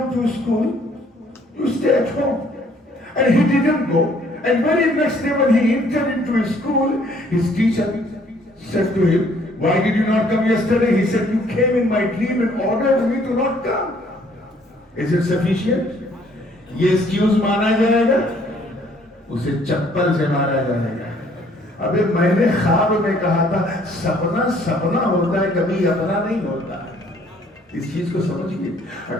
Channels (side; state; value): both; normal; correlation 0.62